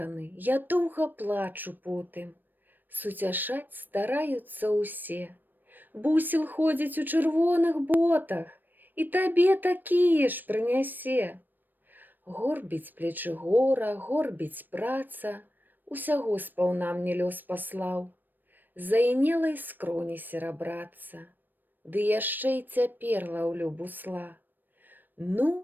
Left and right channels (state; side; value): late; left; 0.091 ms